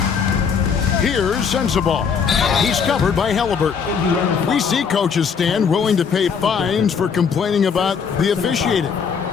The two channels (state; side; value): quieter; right; 6.3 dB